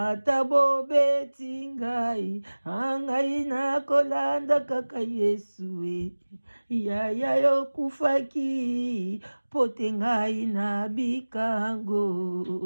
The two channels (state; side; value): inverted; both; correlation -1.00